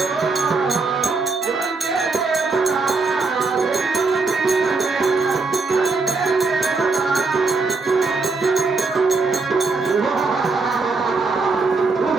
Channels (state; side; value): quieter; left; 4.0 dB